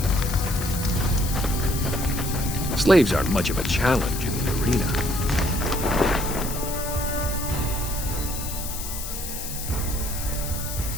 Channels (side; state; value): left; noise; hiss, 7 dB below the sound